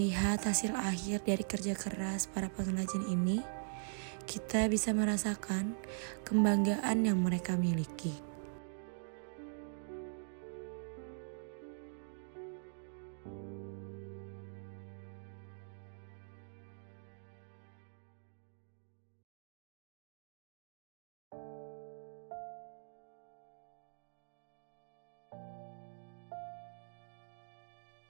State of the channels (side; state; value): left; silent; digital silence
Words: hasil akhir dari kerja keras para pengrajin ini, kita bisa merasakan kebanggaan yang mereka miliki.